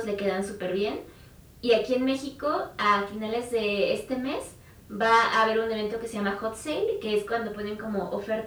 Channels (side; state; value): both; identical; correlation 1.00